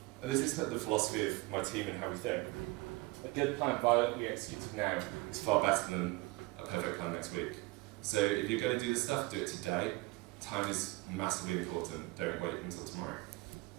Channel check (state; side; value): quieter; left; 22.4 dB